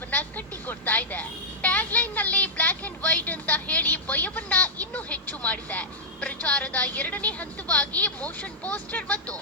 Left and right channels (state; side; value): normal; both; correlation -0.08